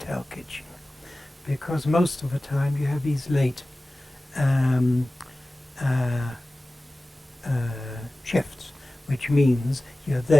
kitchen, because most of the time you have these late shifts, which means you're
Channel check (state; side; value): normal; both; correlation 0.96